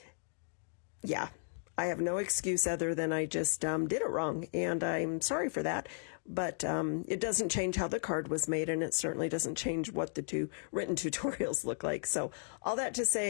Yeah, I have no excuse other than I just did it wrong, and I'm sorry for that. But it doesn't change how the card was made, and it certainly doesn't change what the two written tutorials look like. So all that to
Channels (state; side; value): silent; right; digital silence